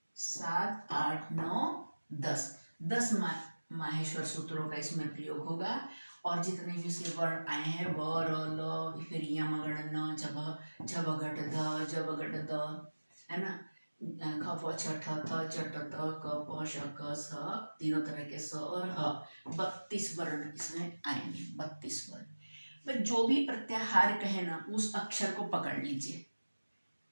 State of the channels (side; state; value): both; inverted; correlation -1.00